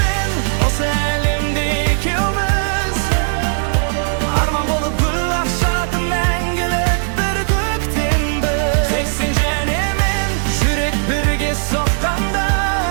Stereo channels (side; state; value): left; silent; digital silence